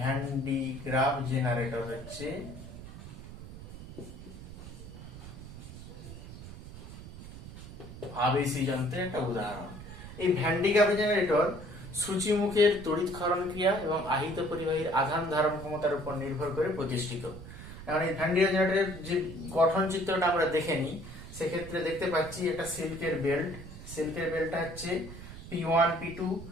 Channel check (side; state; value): right; noise; rumble, 13 dB below the sound